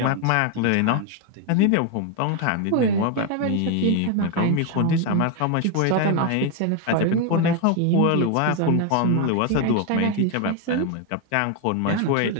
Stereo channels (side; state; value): both; different; correlation 0.01